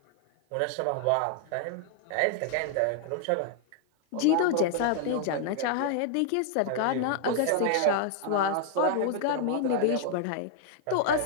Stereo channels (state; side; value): different; both; correlation -0.01